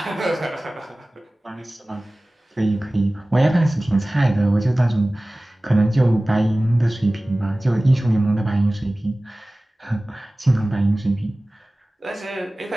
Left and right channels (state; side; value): normal; both; correlation 0.98